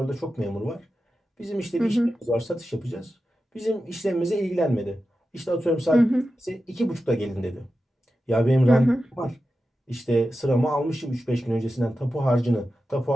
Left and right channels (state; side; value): normal; both; correlation 0.92